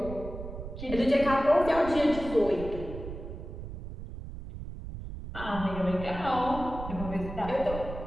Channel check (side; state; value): right; noise; rumble, 9 dB below the sound